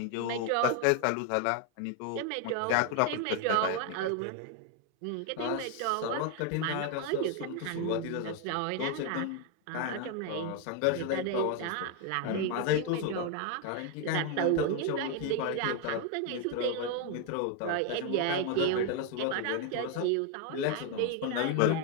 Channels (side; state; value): both; different; correlation 0.01